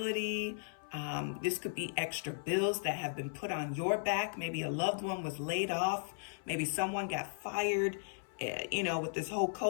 This could be extra bills that have been put on your back. Maybe a loved one was laid off. Maybe someone got fired. You know, with this whole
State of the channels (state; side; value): silent; right; 54 dB below the other